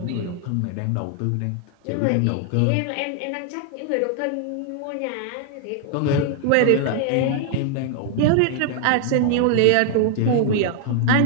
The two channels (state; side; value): different; both; correlation 0.00